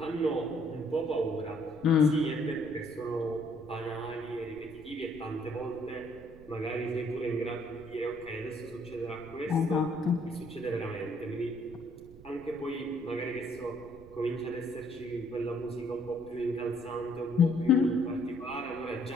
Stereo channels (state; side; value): noise; right; rumble, 19 dB below the sound